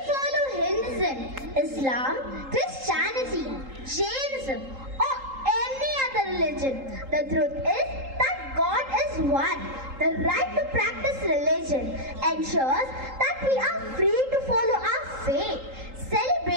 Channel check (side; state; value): left; late; 3.8 ms